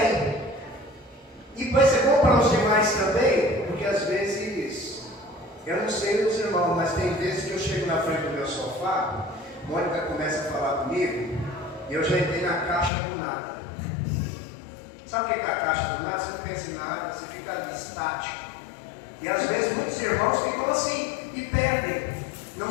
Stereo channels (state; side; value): drops out; right; at 12.9 s